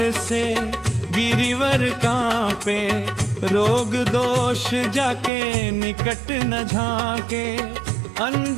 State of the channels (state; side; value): drops out; left; at 5.3 s